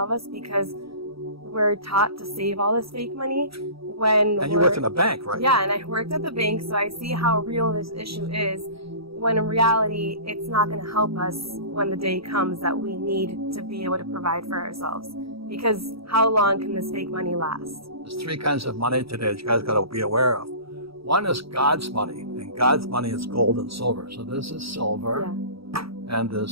of us because we're taught to save all this fake money And you worked in a bank, right? Yeah, and I worked at the bank, so I see how real this issue is. When in reality, it's not going to help us when the day comes that we need to be able to provide for ourselves. Because how long can this fake money last? There's 3 kinds of money today that you guys got to be aware of. One is God's money, and God's money is gold and silver. So this is silver, and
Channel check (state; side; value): late; left; 0.76 ms